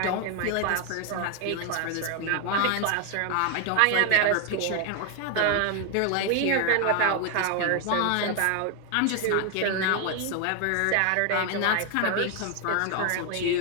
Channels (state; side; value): different; both; correlation 0.01